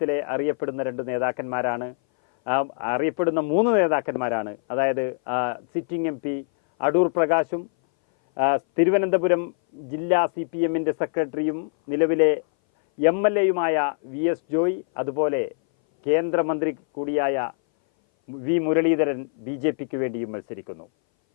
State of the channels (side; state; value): right; silent; 60 dB below the other